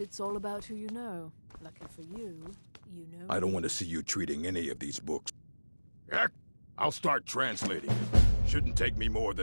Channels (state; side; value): inverted; both; correlation -1.00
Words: all about who you know. Lucky for you, you know... I don't want to see you treating any of these books. Heck, I'll start translating it. Shouldn't take me more